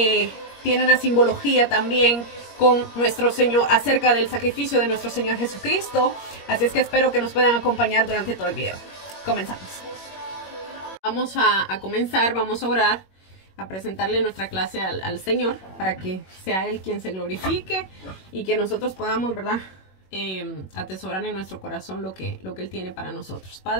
tiene una simbología también con nuestro Señor, acerca del sacrificio de nuestro Señor Jesucristo. Así es que espero que nos puedan acompañar durante todo el video. Comenzamos. Vamos a comenzar, vamos a orar, a presentarle nuestra clase al Señor para que sea Él quien se glorifique y que nosotros podamos, ¿verdad?, atesorar en nuestro corazón lo que Él tiene para nosotros.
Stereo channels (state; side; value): late; right; 21 ms